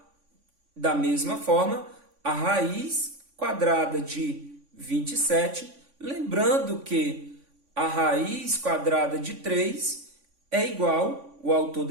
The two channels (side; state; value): left; late; 3.5 ms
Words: da mesma forma a raiz quadrada de 27, lembrando que a raiz quadrada de 3 é igual, o autor